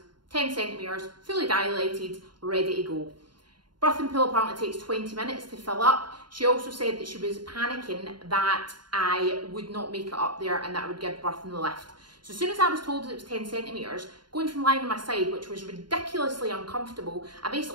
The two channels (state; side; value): late; left; 0.72 ms